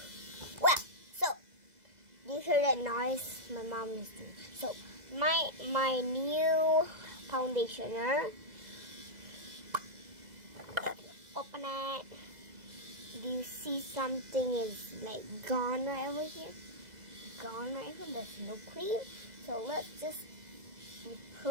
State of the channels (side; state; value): left; late; 2.0 ms